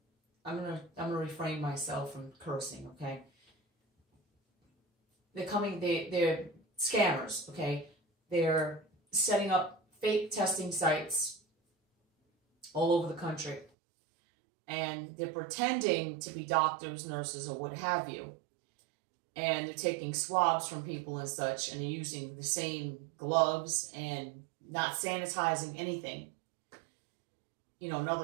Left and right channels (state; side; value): drops out; left; at 13.7 s